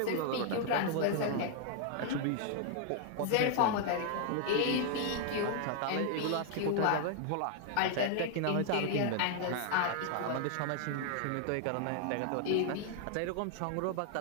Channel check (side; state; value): both; different; correlation 0.00